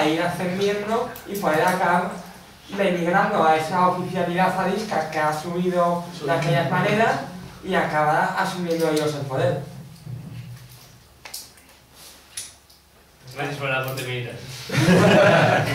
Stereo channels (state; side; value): identical; both; correlation 1.00